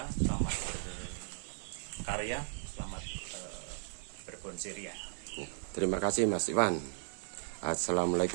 selamat berkarya, selamat berbonsai ria. Ya, terima kasih Mas Iwan.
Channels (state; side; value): silent; left; digital silence